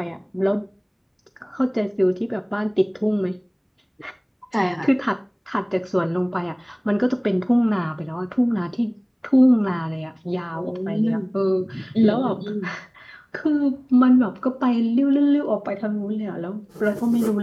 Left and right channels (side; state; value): both; identical; correlation 1.00